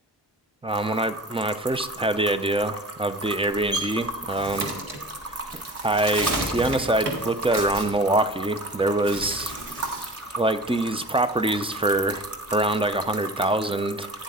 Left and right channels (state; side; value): normal; both; correlation 0.38